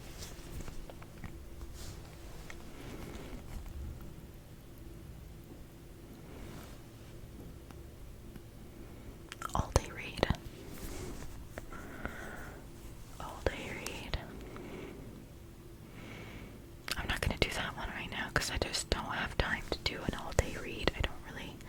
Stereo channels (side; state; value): both; identical; correlation 1.00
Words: All day read. All day read. I'm not gonna do that one right now because I just don't have time to do an all day read. I don't really,